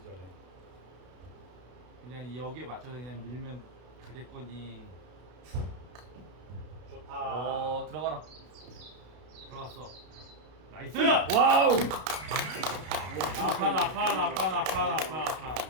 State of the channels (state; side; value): late; left; 32 ms